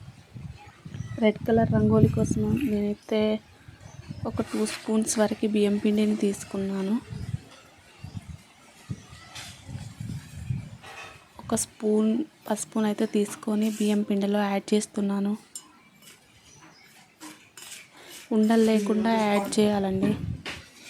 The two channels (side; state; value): both; identical; correlation 1.00